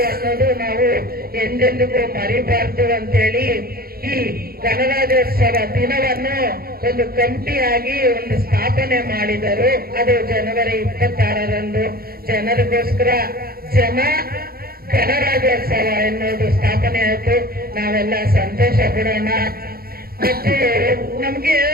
ಅನ್ನೋದು ನಾವು ಎಂದೆಂದಿಗೂ ಮರಿಬಾರ್ದು ಅಂತೇಳಿ ಈ ಗಣರಾಜ್ಯೋತ್ಸವ ದಿನವನ್ನು ಒಂದು ಕಮಿಟಿಯಾಗಿ ಒಂದು ಸ್ಥಾಪನೆ ಮಾಡಿದರು. ಅದು ಜನವರಿ 26ರಂದು ಜನರಿಗೋಸ್ಕರ ಗಣರಾಜ್ಯೋತ್ಸವ ಎನ್ನುವುದು ಸ್ಥಾಪನೆ ಆಯಿತು. ನಾವೆಲ್ಲ ಸಂತೋಷ ಪಡೋಣ ಮತ್ತು ನಮ್ಗೆ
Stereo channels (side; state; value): left; late; 0.44 ms